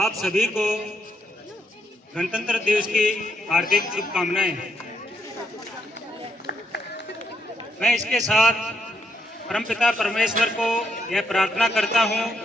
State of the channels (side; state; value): both; normal; correlation 0.78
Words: सभी को गणतंत्र दिवस की हार्दिक शुभकामनाएं। मैं इसके साथ परमपिता परमेश्वर को यह प्रार्थना करता हूं